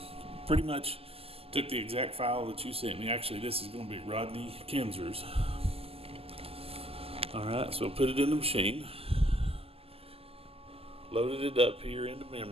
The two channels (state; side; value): late; left; 0.28 ms